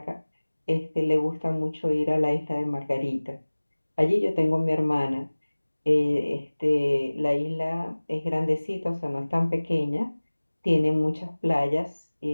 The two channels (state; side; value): inverted; both; correlation -1.00